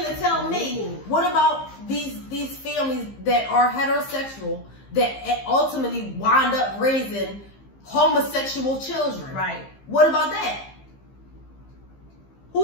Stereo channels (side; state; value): right; late; 15 ms